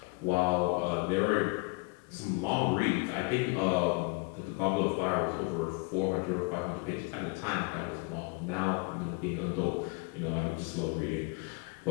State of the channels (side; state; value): right; quieter; 28.9 dB